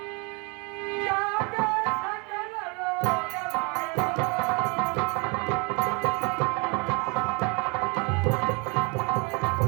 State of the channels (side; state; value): left; quieter; 30.9 dB